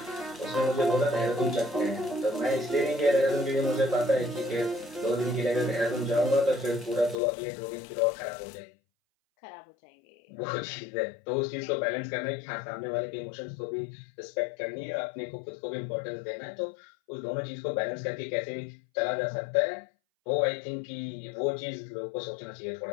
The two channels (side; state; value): right; drops out; at 7.2 s